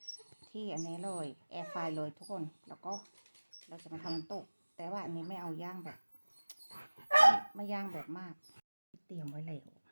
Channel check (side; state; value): both; inverted; correlation -1.00